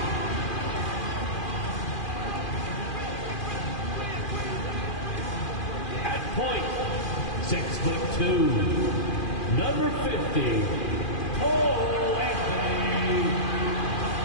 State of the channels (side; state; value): right; late; 2.4 ms